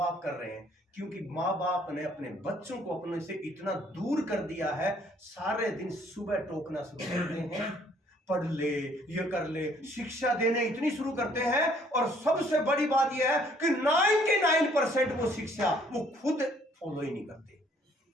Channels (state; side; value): normal; both; correlation 0.62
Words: कर रहे हैं। क्योंकि माँ बाप ने अपने बच्चों को अपने से इतना दूर कर दिया है, सारे दिन सुबह टोकना शुरू करते हैं, पढ़ ले, ये कर ले, शिक्षा देने इतनी शुरू करते हैं। और सबसे बड़ी बात यह है कि 99% वो शिक्षा वो खुद फॉलो ही नहीं करते।